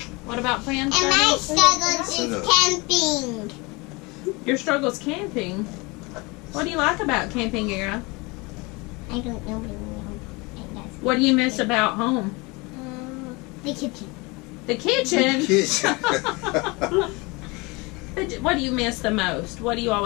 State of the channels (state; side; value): quieter; right; 26.0 dB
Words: What about friends? And my struggles is camping. Your struggle's camping. What do you like about camping, Era? I don't know. What do you miss about home? The kitchen. The kitchen? The kitchen. What do you miss the most? What do you